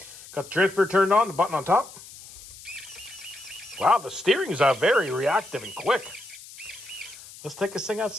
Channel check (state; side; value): noise; left; hiss, 17 dB below the sound